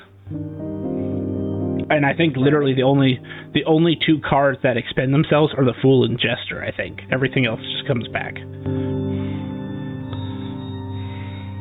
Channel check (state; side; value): identical; both; correlation 1.00